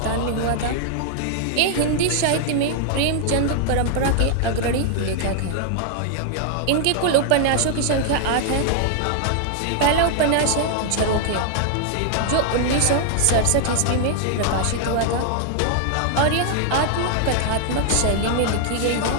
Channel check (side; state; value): both; different; correlation 0.00